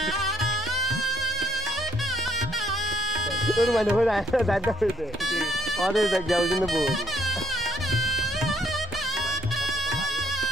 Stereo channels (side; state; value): right; noise; rumble, 17 dB below the sound